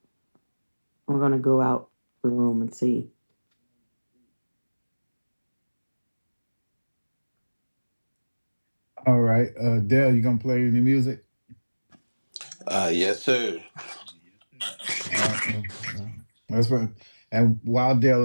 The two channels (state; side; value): inverted; both; correlation -1.00